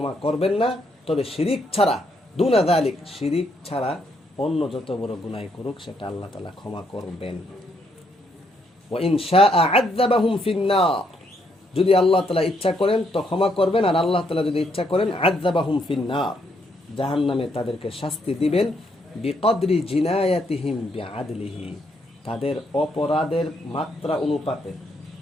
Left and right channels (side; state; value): both; normal; correlation 0.74